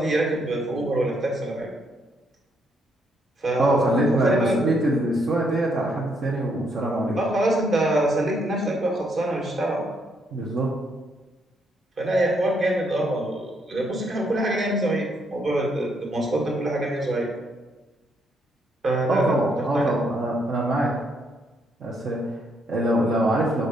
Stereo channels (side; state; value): both; normal; correlation 0.73